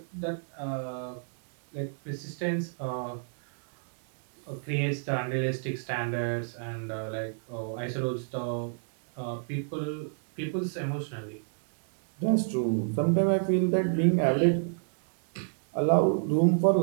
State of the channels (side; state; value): left; silent; digital silence